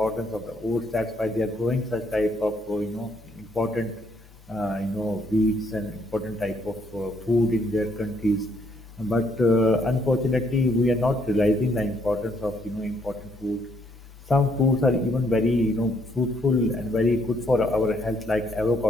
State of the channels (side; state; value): both; normal; correlation 0.70